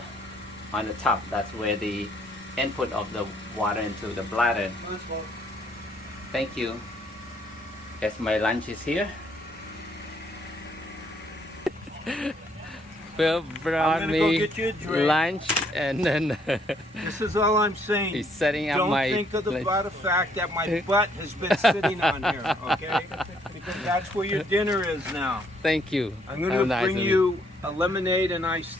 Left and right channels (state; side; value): normal; both; correlation 0.67